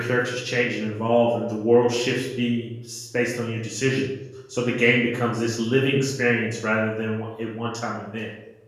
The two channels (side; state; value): both; identical; correlation 1.00